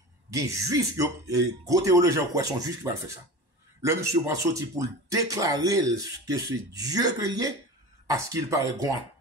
Il y a des juifs, gros théologiens quoi sont juifs qui vont faire ça. L'homme va sortir pour déclarer que c'est Dieu que lié, à ce qu'il paraît qu'on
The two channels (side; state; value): left; late; 1.1 ms